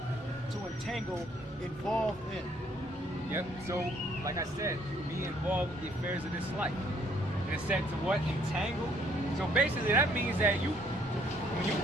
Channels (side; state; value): both; normal; correlation 0.64